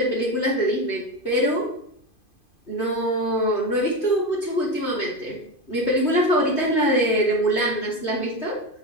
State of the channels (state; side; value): late; right; 2.5 ms